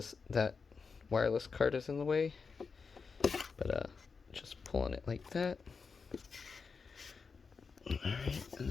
that wireless card is in the way. But just pulling it like that. Alright, and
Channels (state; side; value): quieter; right; 5.1 dB